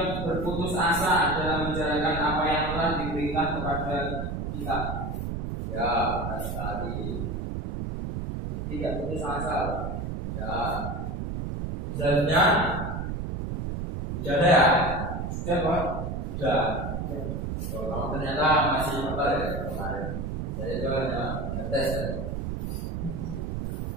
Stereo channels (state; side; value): noise; right; rumble, 4 dB below the sound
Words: berputus asa dalam menjalankan apa yang telah diberikan kepada kita. Ya, benar sekali. Tidak putus asa. Ya. Selanjutnya sudah ada ya? Sudah, Pak. Sudah. Oh, kamu ternyata masih apa ya kemarin? Saya itu hanya ngetes.